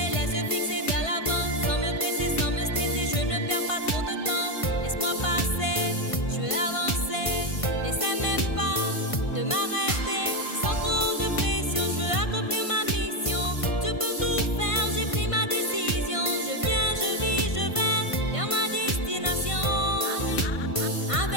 laisse fixer vers l'avant, sans me presser, sans me stresser, je ne perds pas trop de temps. Laisse-moi passer, je veux avancer, n'essaie même pas de m'arrêter. Sans trop de pression, je veux accomplir ma mission. Tu peux tout faire, j'ai pris ma décision. Je viens, je vis, je vais vers ma destination.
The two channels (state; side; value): late; right; 1.5 ms